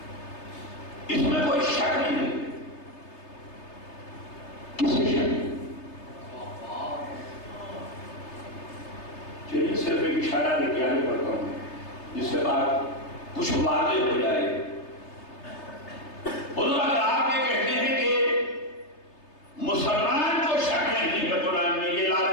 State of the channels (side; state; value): right; late; 3.3 ms